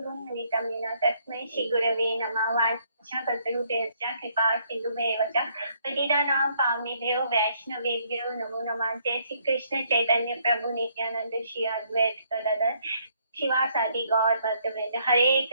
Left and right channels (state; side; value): inverted; both; correlation -0.68